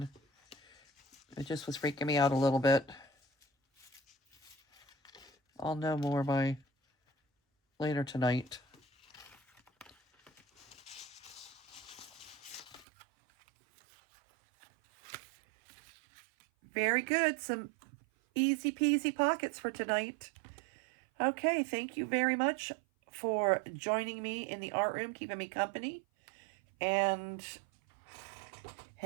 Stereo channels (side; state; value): left; drops out; at 12.9 s